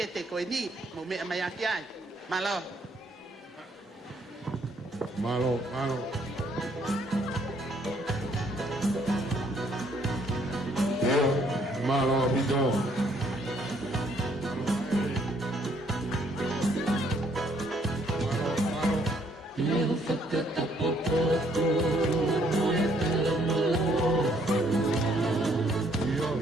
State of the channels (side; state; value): both; normal; correlation 0.67